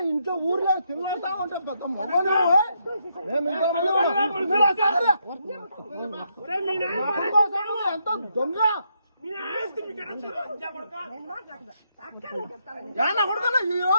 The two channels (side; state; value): both; inverted; correlation -0.77